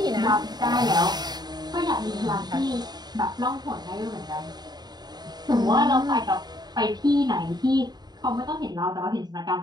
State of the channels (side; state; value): left; late; 0.20 ms